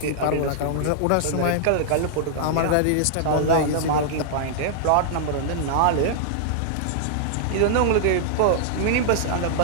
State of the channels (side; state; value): both; different; correlation -0.01